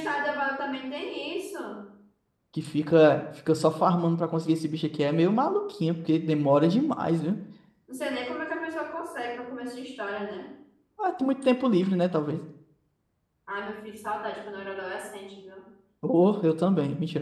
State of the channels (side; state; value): both; identical; correlation 1.00